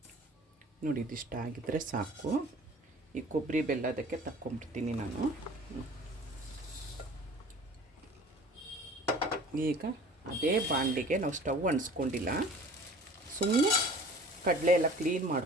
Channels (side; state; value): both; normal; correlation 0.46